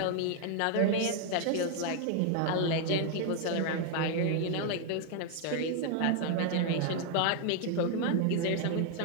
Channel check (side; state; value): both; different; correlation 0.00